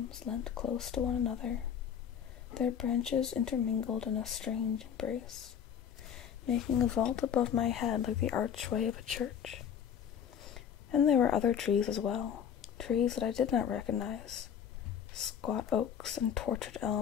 leant close to one another, their branches intermingled in a strange embrace, making a vault above my head like the archway of a church. And there were other trees as well, trees that I did not recognize, squat oaks and tortured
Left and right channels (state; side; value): quieter; right; 8.4 dB